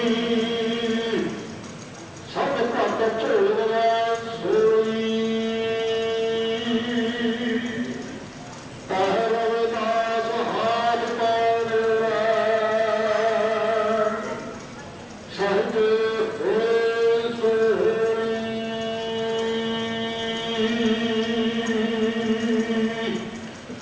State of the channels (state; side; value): identical; both; correlation 1.00